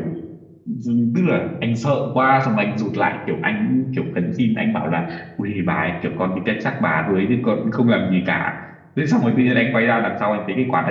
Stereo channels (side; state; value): both; identical; correlation 1.00